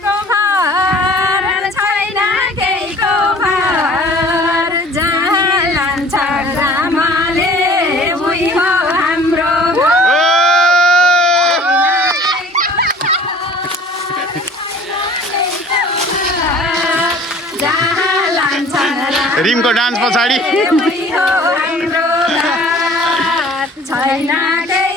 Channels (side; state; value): both; normal; correlation 0.48